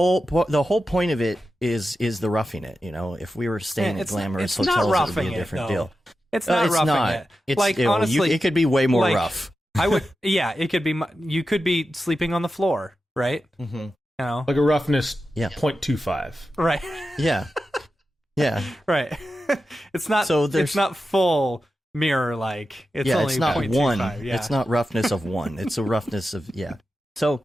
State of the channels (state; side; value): normal; both; correlation 0.91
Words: point of it is the roughing it. You know, if we were staying at glamorous hotels, it would be a different deal. It's not roughing it. It's like, honestly, it could be way more rough. I would, yeah, it could be. You could be sleeping on the floor, right? Mm-hmm. You know, like a roughness 0.25. Right. Yeah. Yeah. Right. It's not. So it's not full mirror like. It's only it's not 0.25. one. Yeah. It's not roughness of one. It's a roughness of So,